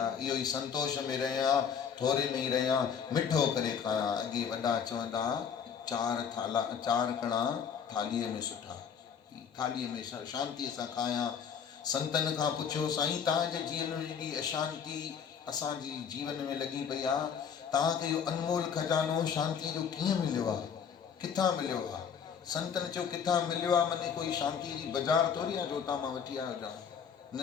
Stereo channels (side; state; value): right; quieter; 7.3 dB